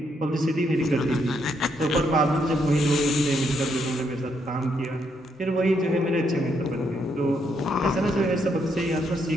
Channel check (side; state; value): both; normal; correlation 0.75